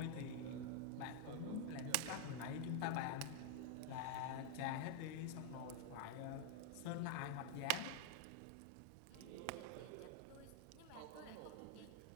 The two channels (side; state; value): both; different; correlation 0.00